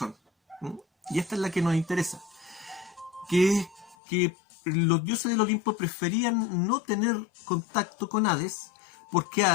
¿no? Y esta es la que nos interesa, que es que los dioses del Olimpo preferían no tener contacto con Hades, porque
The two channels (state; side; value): drops out; right; at 4.0 s